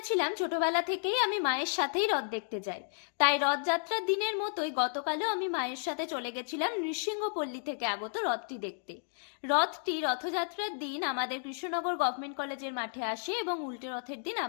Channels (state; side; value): silent; right; digital silence